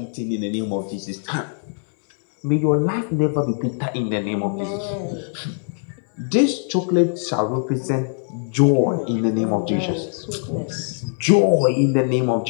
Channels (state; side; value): silent; right; digital silence